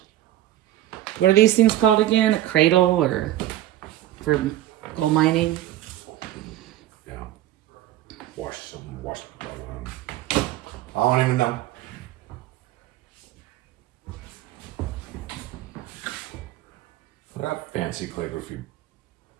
What are these things called again? A cradle or for gold mining? Yeah. Wash. I don't even know. That fancy calligraphy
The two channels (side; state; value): left; quieter; 13.8 dB